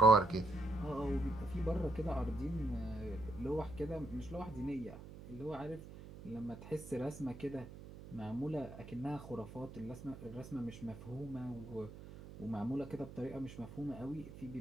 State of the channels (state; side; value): noise; right; hum, 14 dB below the sound